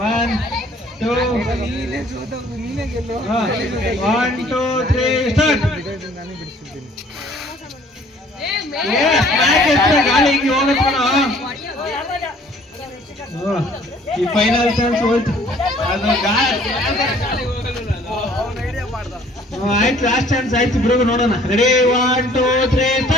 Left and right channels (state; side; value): normal; both; correlation 0.56